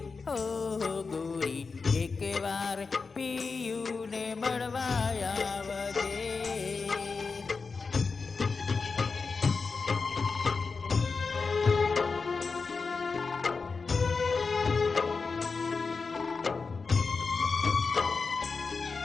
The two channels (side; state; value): right; quieter; 4.6 dB